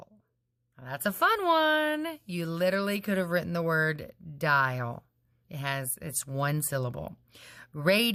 Now, that's a fun one. You literally could have written the word dial. It's one syllable.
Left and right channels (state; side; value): identical; both; correlation 1.00